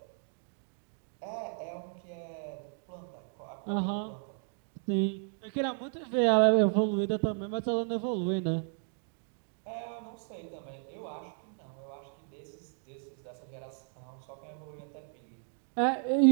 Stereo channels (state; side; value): silent; left; 55 dB below the other